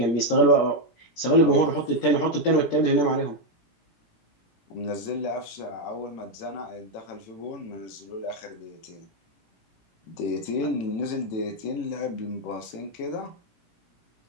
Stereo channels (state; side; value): late; right; 17 ms